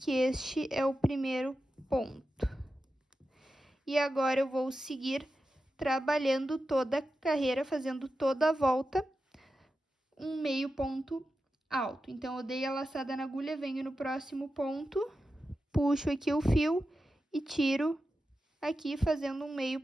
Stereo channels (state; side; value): normal; both; correlation 0.91